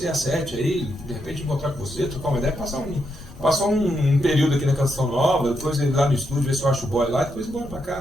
às 7 aí, de repente encontrar com você, trocar uma ideia, passar um período aqui na Canção Nova, depois ir lá no estúdio, ver se eu acho o boy lá, depois ir embora pra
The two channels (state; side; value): noise; left; rumble, 20 dB below the sound